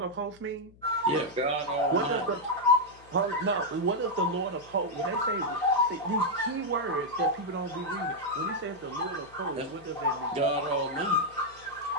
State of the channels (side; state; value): left; noise; hum, 25 dB below the sound